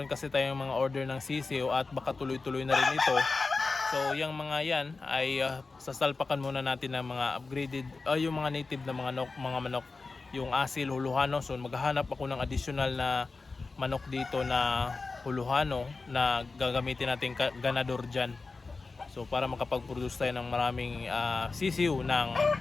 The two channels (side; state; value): right; quieter; 4.0 dB